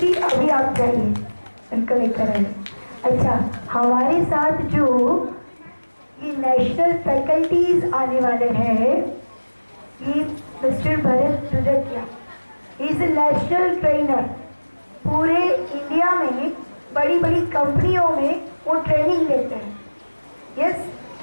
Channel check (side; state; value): both; inverted; correlation -1.00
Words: अभी आप जाइए, उनको लेकर आइए। अच्छा, हमारे साथ जो ये नेशनल फैकल्टीज आने वाले हैं, ये mister Bharat Dudakia, is a national trainer. पूरे इंडिया में बड़ी बड़ी कंपनियों में वो ट्रेनिंग देते हैं। यस,